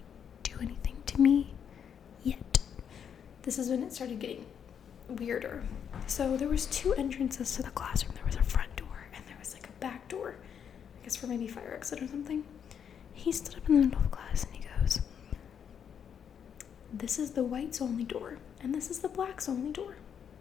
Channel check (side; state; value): right; quieter; 8.0 dB